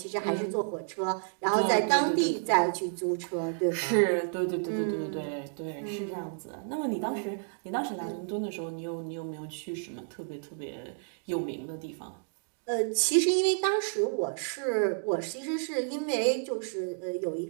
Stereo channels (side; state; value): left; silent; digital silence